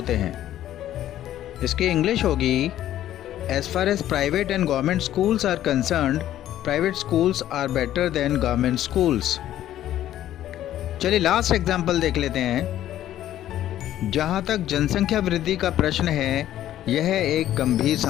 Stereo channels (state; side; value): quieter; right; 12.5 dB